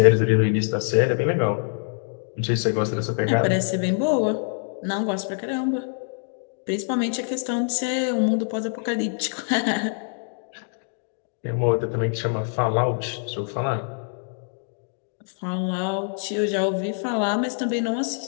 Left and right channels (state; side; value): silent; right; digital silence